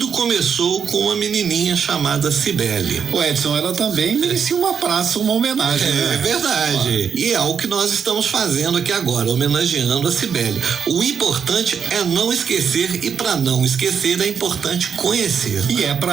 começou com uma menininha chamada Cibele. O Edson, ela também merecia uma praça, uma homenagem, né? É verdade. E é o que nós estamos fazendo aqui agora, homenageando a Cibele. O importante é não esquecer, e para não esquecer é importante conhecer. E é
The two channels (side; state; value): left; quieter; 6.9 dB